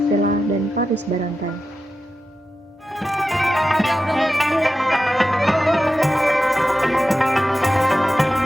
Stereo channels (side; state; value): both; normal; correlation 0.91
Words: dan Paris Barantai.